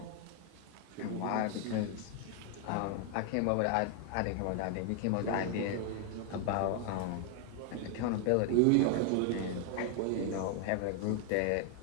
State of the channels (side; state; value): both; different; correlation 0.00